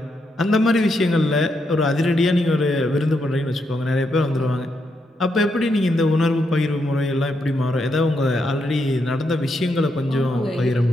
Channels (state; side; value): normal; both; correlation 0.80